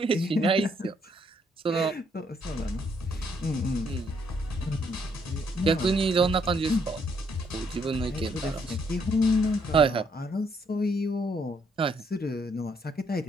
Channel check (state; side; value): normal; both; correlation 0.71